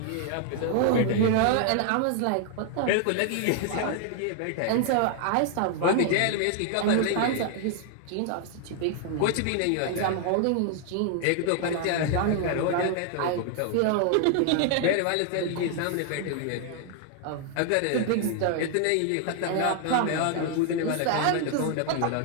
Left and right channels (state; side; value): different; both; correlation 0.00